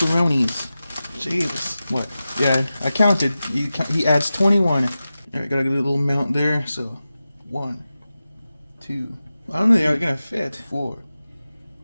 Jesus. What? Yeah, I counted. He adds 21. Alright, gotta get a little amount there. So, 1, 2. I don't know they're gonna fit. 4,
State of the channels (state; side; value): inverted; both; correlation -0.94